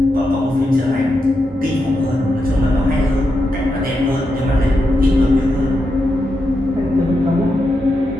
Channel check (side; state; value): both; normal; correlation 0.86